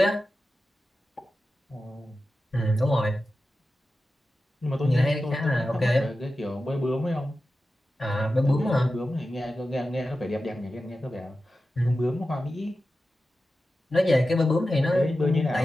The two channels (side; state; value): both; normal; correlation 0.93